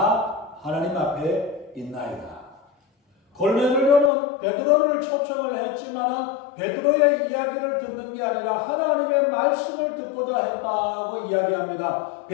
하나님 앞에 있나이다. 고넬료는 베드로를 초청을 했지만 베드로의 이야기를 듣는 게 아니라 하나님의 말씀을 듣고자 했다고 이야기합니다.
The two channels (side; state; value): right; drops out; at 4.1 s